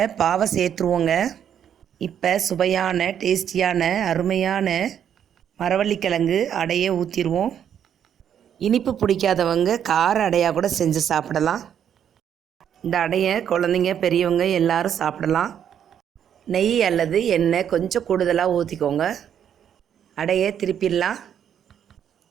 பாவை சேர்த்துருவோங்க. இப்போ சுவையான டேஸ்டியான அருமையான மரவள்ளிக்கிழங்கு அடையை ஊற்றிடுவோம். இனிப்பு பிடிக்காதவங்க கார அடையாக கூட செஞ்சு சாப்பிடலாம். இந்த அடையை குழந்தைங்க பெரியவங்க எல்லாரும் சாப்பிடலாம். நெய் அல்லது எண்ணெய் கொஞ்சம் கூடுதலாக ஊற்றிக்கோங்க. அடையை திருப்பிடலாம்.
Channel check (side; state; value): left; quieter; 9.1 dB